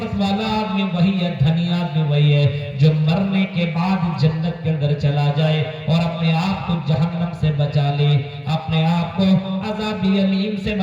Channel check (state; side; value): identical; both; correlation 1.00